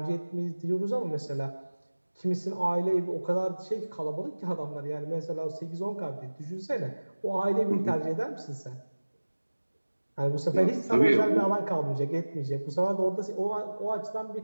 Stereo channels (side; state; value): both; inverted; correlation -1.00